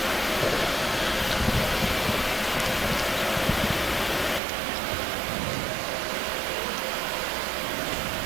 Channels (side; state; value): left; drops out; at 4.4 s